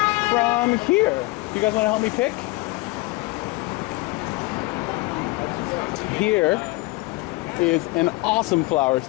from here. You guys wanna help me pick? Here is an awesome flower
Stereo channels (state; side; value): quieter; right; 22.2 dB